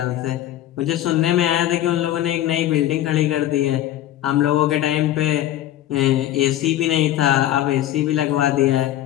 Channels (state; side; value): quieter; right; 13.1 dB